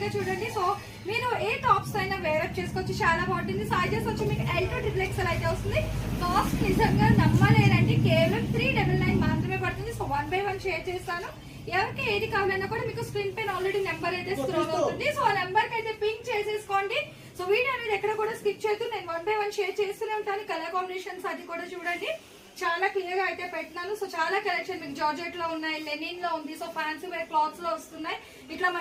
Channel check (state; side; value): identical; both; correlation 1.00